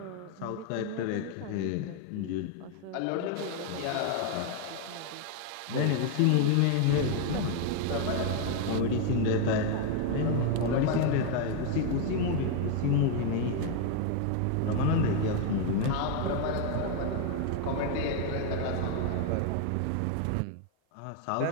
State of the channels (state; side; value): different; both; correlation 0.01